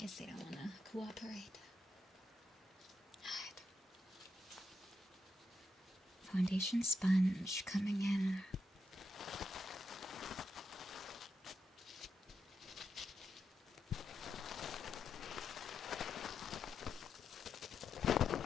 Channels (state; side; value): normal; both; correlation 0.84